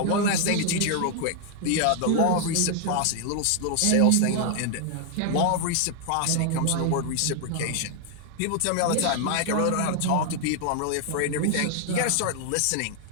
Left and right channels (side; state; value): both; different; correlation 0.00